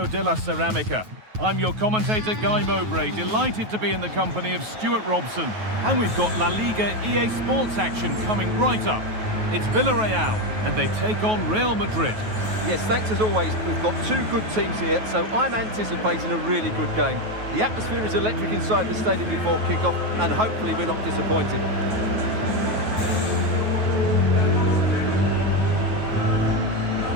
de la Ceramica. I'm your commentator, Guy Mowbray, delighted to be in the company of Stuart Robson. And we've got La Liga EA Sports action coming right up. It's Villarreal, and they take on Real Madrid. Yes, thanks as always. We've got two good teams here, so I'm anticipating a really good game. The atmosphere is electric inside the stadium before kick-off, and hopefully we're not disappointed.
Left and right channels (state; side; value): late; left; 9.3 ms